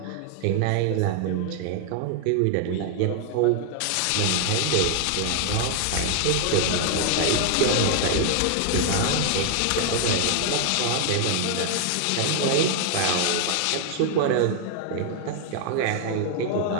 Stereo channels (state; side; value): different; both; correlation 0.00